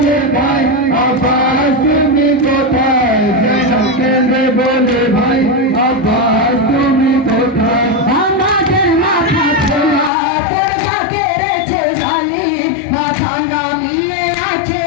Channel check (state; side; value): drops out; right; at 10.1 s